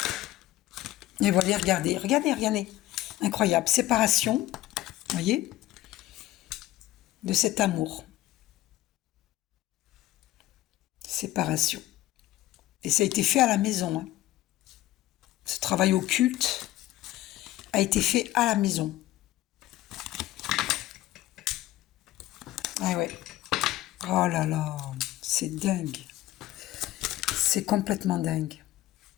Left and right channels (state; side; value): quieter; right; 15.6 dB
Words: Et voilà, regardez. Incroyable. Séparation, vous voyez, de cet amour. Séparation. Et ça a été fait à la maison. Hein. Ce travail occulte a été fait à la maison. Ah ouais. Oh là là, c'est dingue. C'est complètement dingue.